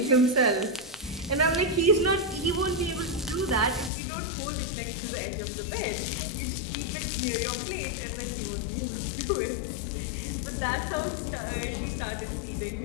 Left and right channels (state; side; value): drops out; right; at 3.9 s